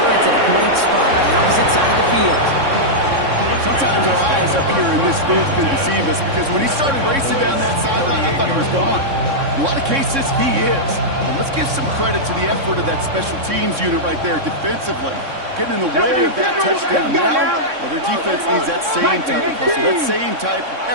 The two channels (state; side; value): late; left; 3.6 ms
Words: at a great spot on the opposite side of the field. Sometimes our eyes up here in this booth can deceive us because when he started racing down that sideline, I thought he was gone. In a lot of cases, he is. But let's give some credit to the effort of that special teams unit right there defensively. Getting in the way of that touchdown now, well, their defense needs that same type of hustle, that same type of